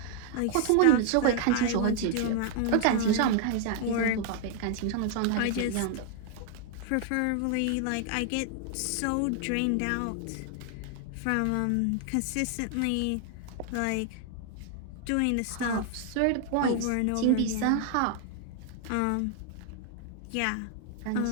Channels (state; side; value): different; both; correlation 0.00